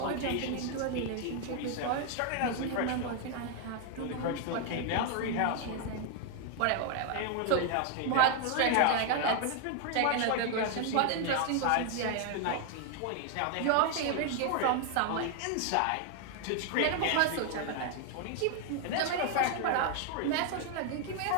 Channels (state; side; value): different; both; correlation 0.00